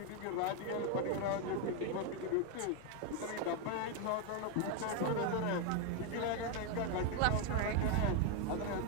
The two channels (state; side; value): different; both; correlation 0.01